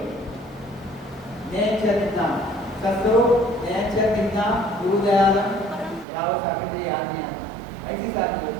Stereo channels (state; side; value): drops out; left; at 6.1 s